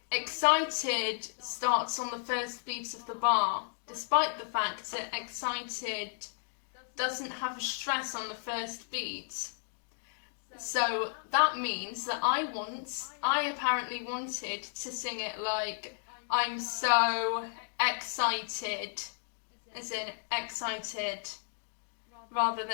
excited starts on the first beat of the bar, despite the fact that excited doesn't have a stress on the first beat. So that means that I apparently wanted to sing it like, I'm so excited, as in excited, rather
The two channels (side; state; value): right; silent; digital silence